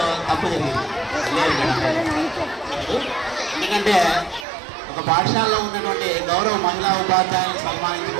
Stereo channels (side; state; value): left; drops out; at 4.5 s